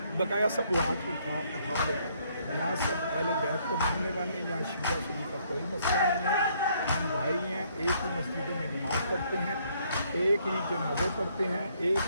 बकाया सब वो हाथ उठा लेंगे। यहाँ सब अहले बैत को मानने वाले हैं, यहाँ शिया सुन्नी का कोई मसला नहीं है। हम भाई हैं, एक ही मस्जिदों में नमाज़ पढ़ते हैं, एक ही जनाजे पढ़ते हैं,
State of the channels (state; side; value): inverted; both; correlation -0.67